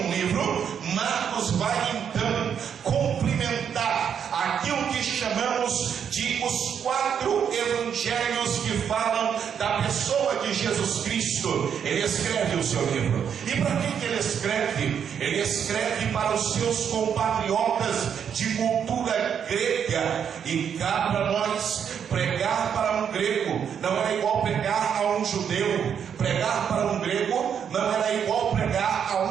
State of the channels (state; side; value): quieter; left; 7.9 dB